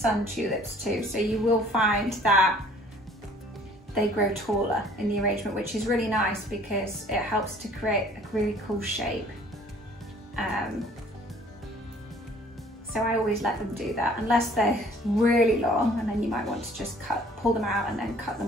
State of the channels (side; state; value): both; normal; correlation 0.55